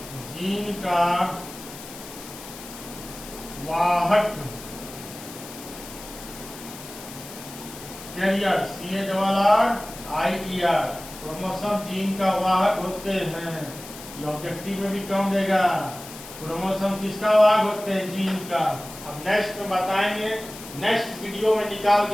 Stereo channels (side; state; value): left; noise; hiss, 14 dB below the sound